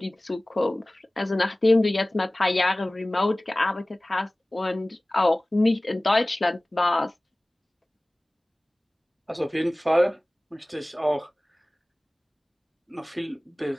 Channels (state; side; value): normal; both; correlation 0.98